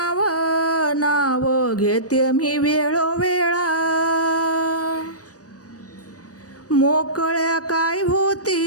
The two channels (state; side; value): late; right; 0.67 ms